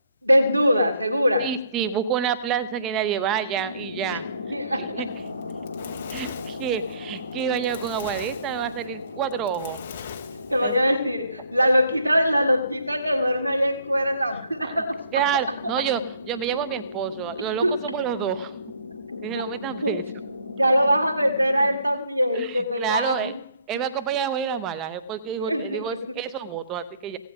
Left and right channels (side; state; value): both; inverted; correlation -0.63